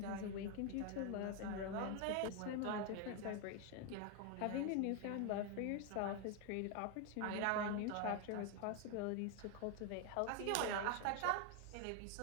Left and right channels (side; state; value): both; different; correlation 0.01